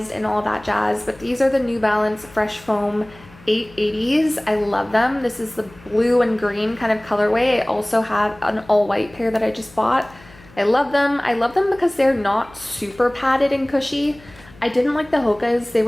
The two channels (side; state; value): left; noise; hum, 24 dB below the sound